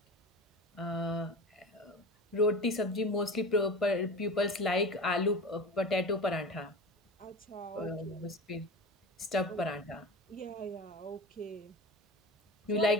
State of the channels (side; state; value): both; normal; correlation 0.31